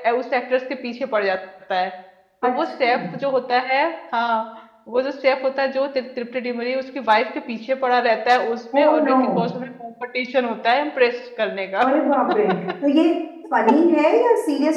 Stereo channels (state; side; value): identical; both; correlation 1.00